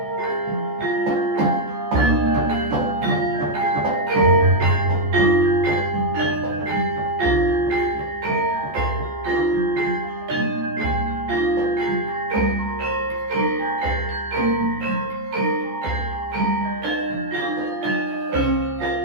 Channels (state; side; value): late; left; 14 ms